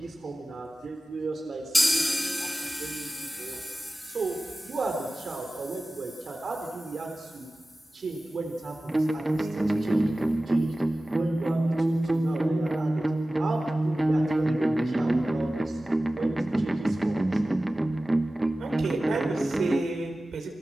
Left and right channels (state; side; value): normal; both; correlation 0.96